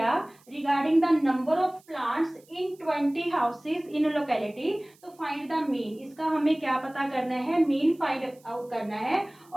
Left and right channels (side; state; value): right; noise; hiss, 30 dB below the sound